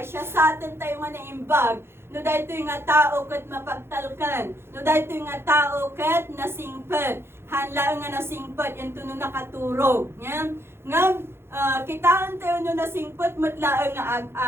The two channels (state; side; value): late; left; 0.12 ms